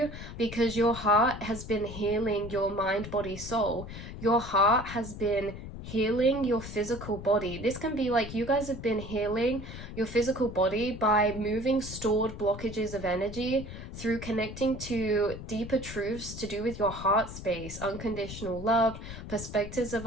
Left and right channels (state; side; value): noise; left; rumble, 10 dB below the sound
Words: because your heart has been healing your mind, body, soul. Your heart has been healing your physical body. This can be like you guys have been healing your physical body by moving stored blockages of energy through connecting to deeper truths to do with your heart space, unconditional love, perspectives of